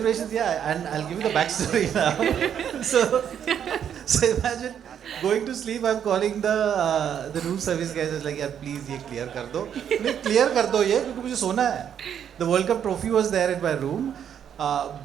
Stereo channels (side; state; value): left; quieter; 8.8 dB